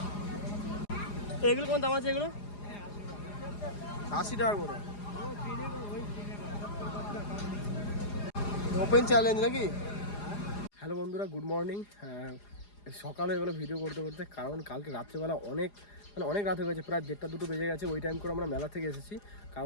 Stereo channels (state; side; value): late; right; 4.9 ms